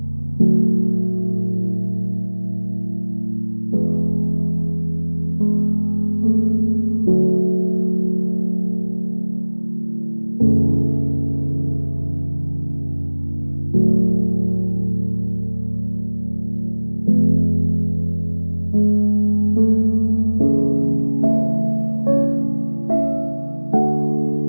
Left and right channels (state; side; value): inverted; both; correlation -1.00